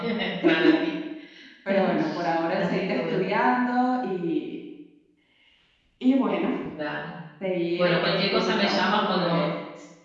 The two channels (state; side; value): identical; both; correlation 1.00